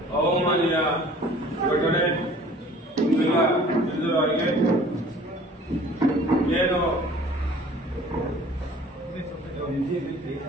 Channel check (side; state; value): both; normal; correlation 0.49